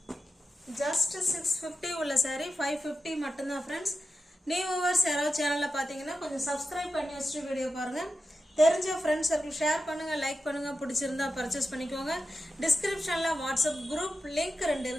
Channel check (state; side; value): normal; both; correlation 0.91